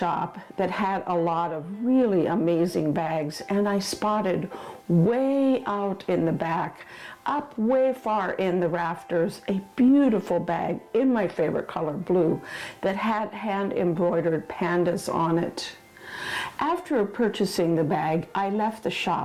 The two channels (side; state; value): both; identical; correlation 1.00